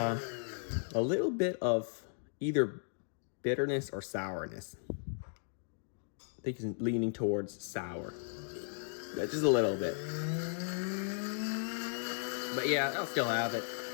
A little bit of either bitterness or sourness. I think it's leaning towards sour. Yeah, just a little bit. But yeah, I'll still have it.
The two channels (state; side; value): silent; right; digital silence